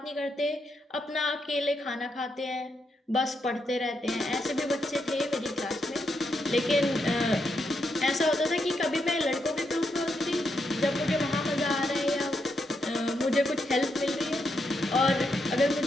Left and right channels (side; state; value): both; normal; correlation 0.81